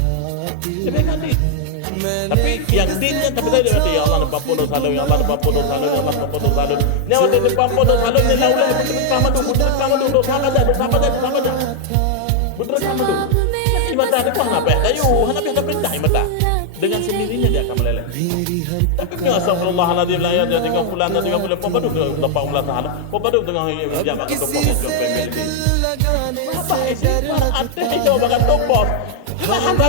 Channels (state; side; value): different; both; correlation 0.00